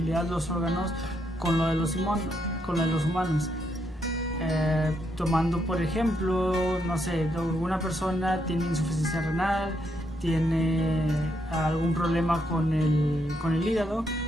los órganos con lo de los humanos. Tomando por ejemplo, no sé, alguna persona tiene insuficiencia renal, tiene algún problema con el hígado,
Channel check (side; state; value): both; normal; correlation 0.77